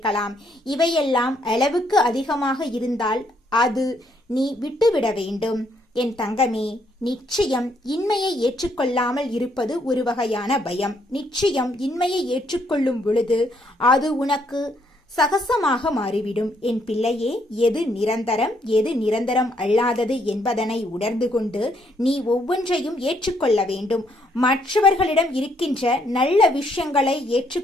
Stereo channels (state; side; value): normal; both; correlation 0.71